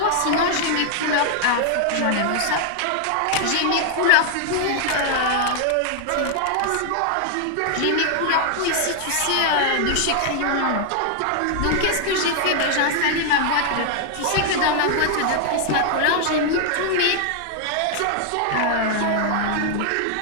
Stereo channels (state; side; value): different; both; correlation 0.00